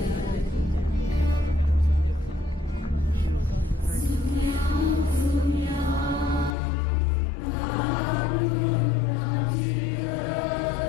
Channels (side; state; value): right; drops out; at 6.5 s